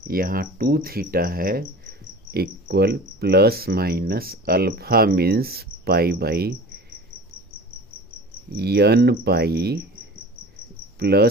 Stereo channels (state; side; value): normal; both; correlation 0.39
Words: यहाँ 2 थीटा है equal plus minus alpha means π/n pi